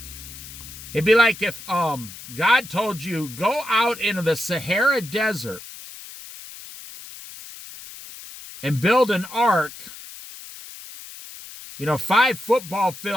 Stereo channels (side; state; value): left; noise; hiss, 15 dB below the sound